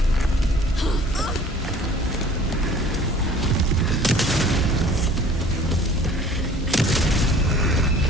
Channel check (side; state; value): both; normal; correlation 0.49